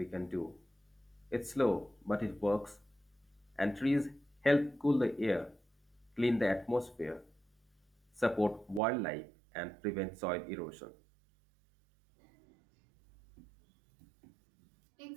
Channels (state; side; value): drops out; left; at 8.8 s